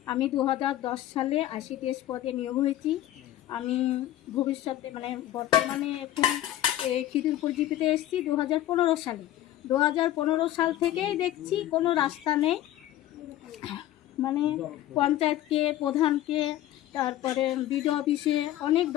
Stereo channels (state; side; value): quieter; right; 13.5 dB